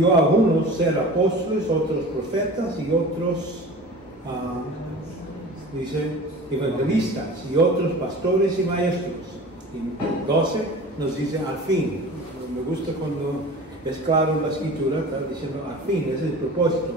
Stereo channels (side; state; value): both; normal; correlation 0.38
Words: a unos ser apóstoles, otros profetas y otros, dice, evangelistas y otros pastores y maestros. Y 12 nos dice al fin. Me gusta cuando es claro en la escritura, está diciendo al fin, ese es el propósito,